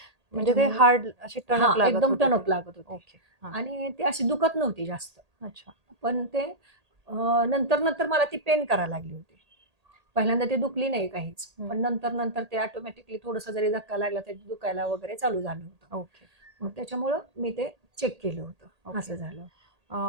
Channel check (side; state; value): left; late; 1.8 ms